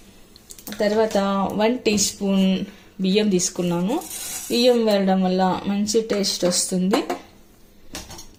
తర్వాత 1 టీ స్పూన్ బియ్యం తీసుకున్నాను. బియ్యం వేయడం వల్ల మంచి టేస్ట్ వస్తుంది.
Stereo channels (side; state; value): both; identical; correlation 1.00